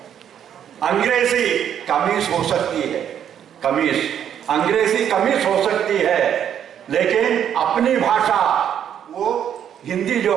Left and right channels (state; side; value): quieter; left; 9.3 dB